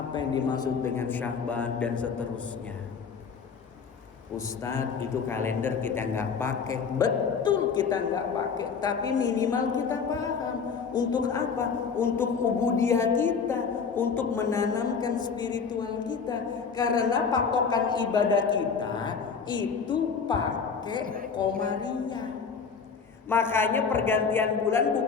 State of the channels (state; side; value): quieter; right; 5.8 dB